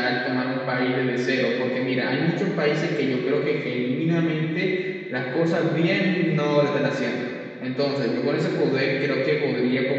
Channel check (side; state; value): both; identical; correlation 1.00